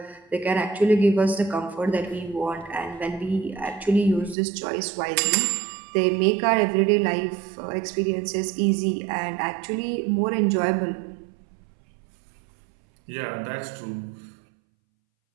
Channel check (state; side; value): drops out; left; at 4.4 s